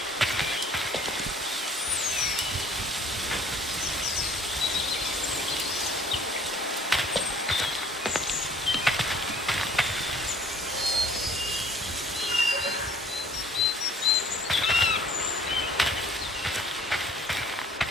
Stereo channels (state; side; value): normal; both; correlation 0.55